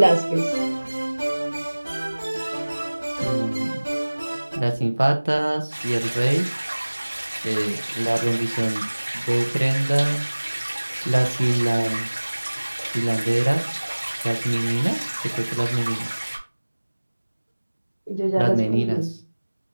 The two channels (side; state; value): both; inverted; correlation -1.00